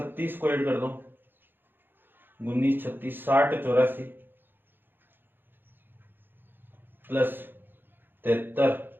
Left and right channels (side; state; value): left; late; 0.098 ms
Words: को ऐड कर दो, 19 36 60 84, प्लस 73